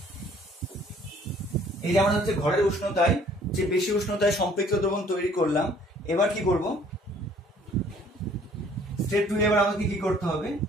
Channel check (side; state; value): both; normal; correlation 0.57